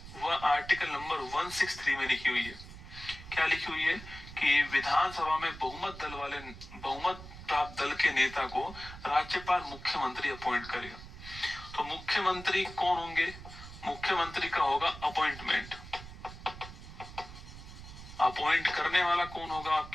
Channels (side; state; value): right; noise; rumble, 14 dB below the sound